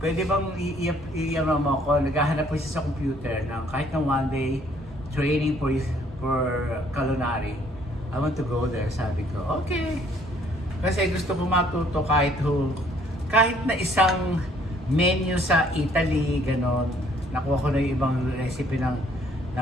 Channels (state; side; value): normal; both; correlation 0.62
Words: pwede bang i-ano mo ako? Naghahanap po siya sa computer ng kahit na one day training for culinary. I want to go there, sabi ko. Okay. Kasi gusto ko matuto kahit na isang menu sa Italy, ganon. Nakuha ko na yung ibang recipe ng